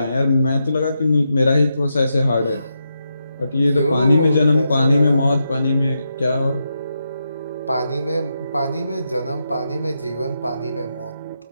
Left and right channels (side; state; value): both; inverted; correlation -0.85